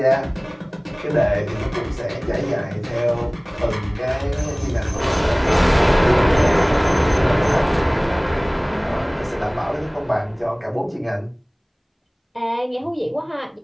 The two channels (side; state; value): both; identical; correlation 1.00